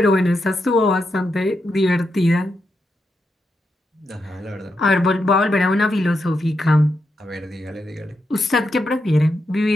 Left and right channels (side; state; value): both; normal; correlation 0.84